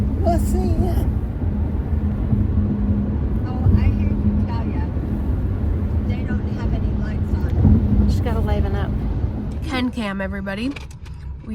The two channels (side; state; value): both; identical; correlation 1.00